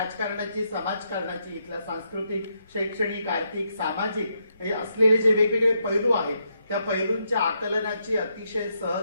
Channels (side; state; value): both; inverted; correlation -0.79